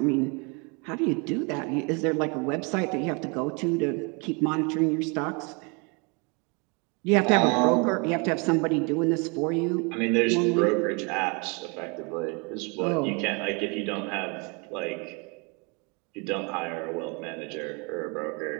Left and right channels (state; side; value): quieter; left; 31.7 dB